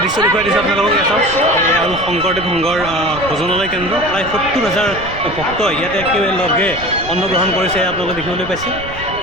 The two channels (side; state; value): right; noise; rumble, 13 dB below the sound